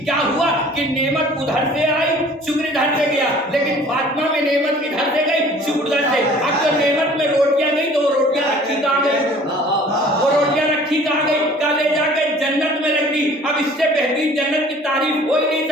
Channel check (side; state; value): both; normal; correlation 0.50